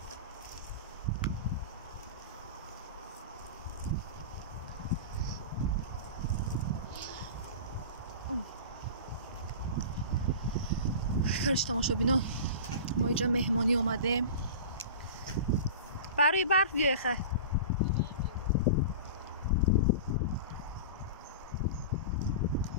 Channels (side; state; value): both; inverted; correlation -0.33